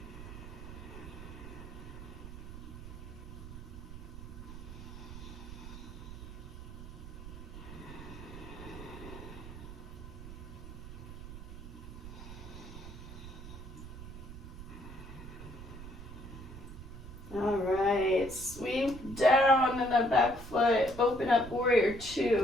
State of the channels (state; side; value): noise; right; rumble, 11 dB below the sound